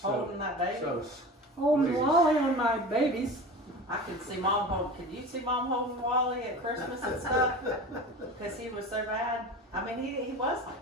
Holding that baby? so Holding Please. Wally on my babies. I could see Mom holding. Could you see Mom holding Wally at Christmas and stuff? Because he was so bad. I mean, he was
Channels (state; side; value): normal; both; correlation 0.33